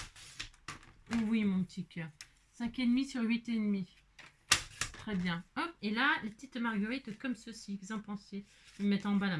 Oui, mon petit cœur. 5,5 sur 8,5. Très bien. Hop. Et là, les petites marguerites comme ceci. Vous en pensez? Je vais mettre en bas la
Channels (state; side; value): identical; both; correlation 1.00